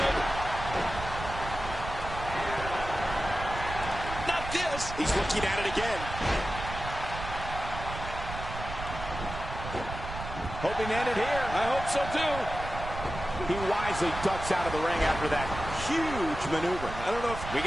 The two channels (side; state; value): right; noise; rumble, 8 dB below the sound